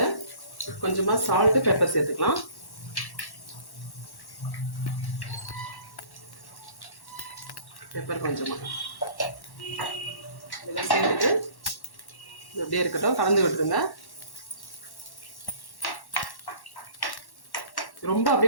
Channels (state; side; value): late; right; 1.1 ms